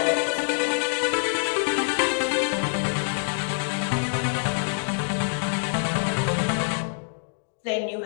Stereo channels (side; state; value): right; silent; digital silence